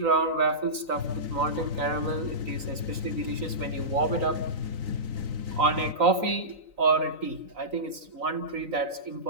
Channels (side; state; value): left; late; 3.9 ms